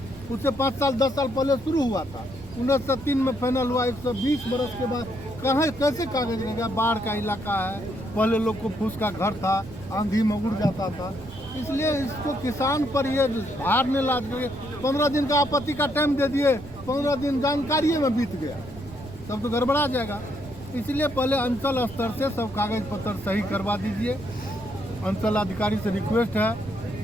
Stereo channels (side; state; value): right; noise; rumble, 15 dB below the sound